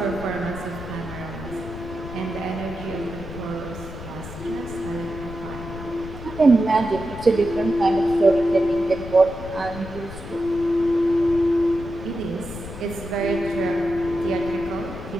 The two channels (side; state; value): left; noise; rumble, 11 dB below the sound